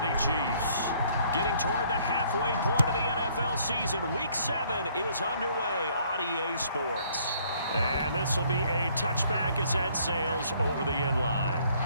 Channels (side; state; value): both; inverted; correlation -0.63